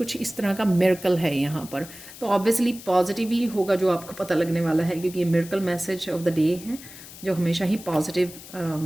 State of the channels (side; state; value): left; noise; hiss, 16 dB below the sound